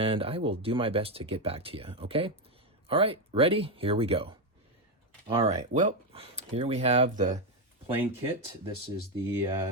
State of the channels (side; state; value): both; normal; correlation 0.07